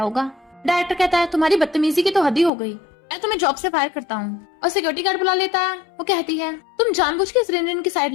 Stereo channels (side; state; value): right; drops out; at 2.5 s